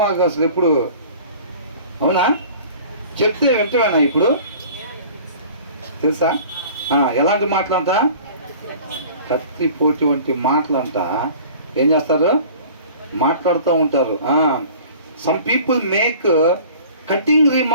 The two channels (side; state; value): both; inverted; correlation -0.46